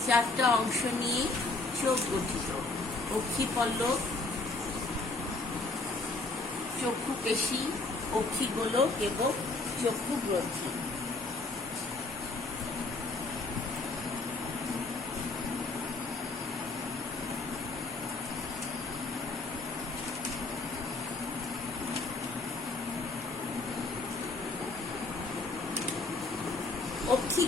4টা অংশ নিয়ে চোখ গঠিত: অক্ষিপল্লব, চক্ষু পেশী, অক্ষিগোলক এবং চক্ষু গ্রন্থি।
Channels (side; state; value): right; quieter; 3.3 dB